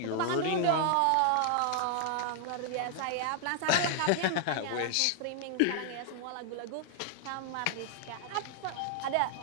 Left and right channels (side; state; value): both; different; correlation 0.00